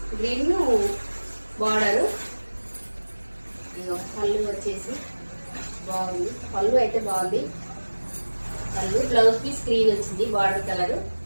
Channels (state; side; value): inverted; both; correlation -1.00